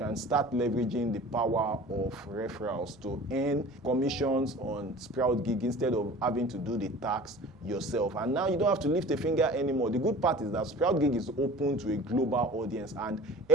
start leveraging the power of referrals to earn commissions on SproutGigs instead of having to do the tax yourself. And now you don't have to lift a finger anymore. The good part is that SproutGigs is open to a global audience and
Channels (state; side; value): noise; right; rumble, 28 dB below the sound